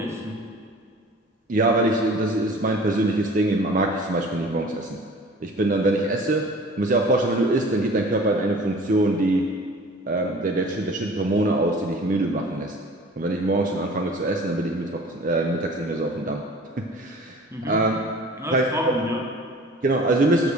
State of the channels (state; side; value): normal; both; correlation 0.45